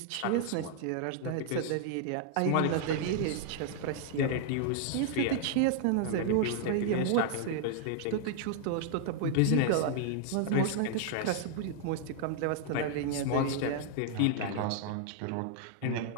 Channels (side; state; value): both; different; correlation 0.00